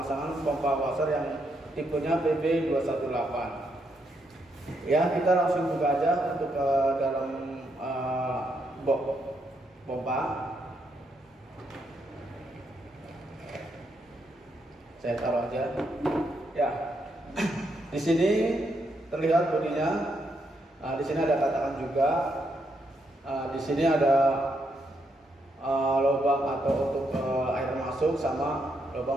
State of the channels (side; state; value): both; normal; correlation 0.78